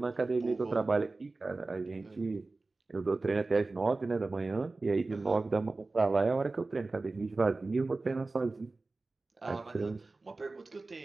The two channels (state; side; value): quieter; left; 3.4 dB